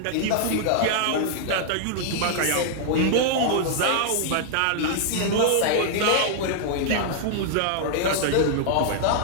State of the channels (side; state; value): both; different; correlation -0.01